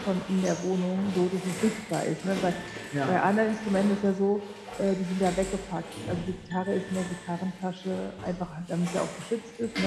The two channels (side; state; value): both; identical; correlation 1.00